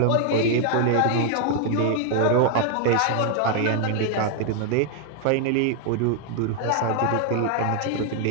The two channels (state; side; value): different; both; correlation 0.00